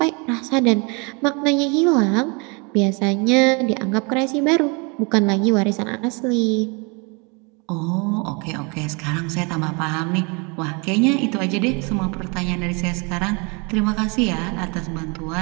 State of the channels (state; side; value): quieter; left; 31.1 dB